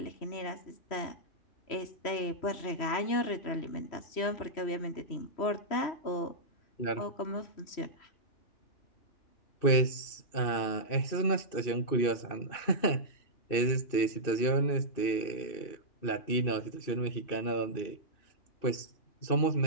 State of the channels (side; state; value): right; late; 3.1 ms